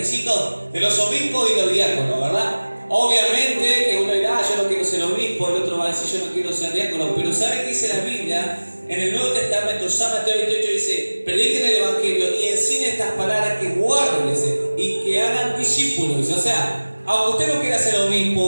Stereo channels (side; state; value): both; inverted; correlation -1.00